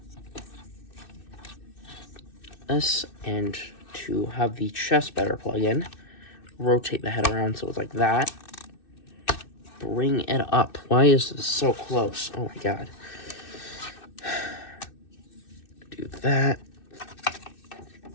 this, and to have the chest better plug in, rotate the head around so it's like that. Bring it up. Why is this so close? Oh my god. Do that.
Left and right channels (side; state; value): right; late; 2.6 ms